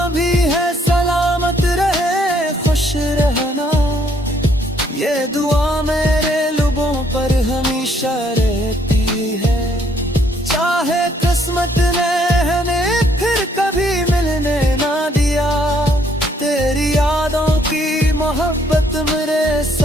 भी है सलामत रहे खुश रहना, ये दुआ मेरे लबों पर हमेशा रहती है। चाहे किस्मत ने हमें फिर कभी मिलने ना दिया, तेरी यादों की मोहब्बत मेरे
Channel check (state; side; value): normal; both; correlation 0.67